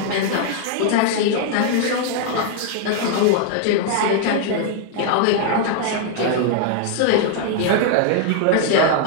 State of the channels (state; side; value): different; both; correlation 0.00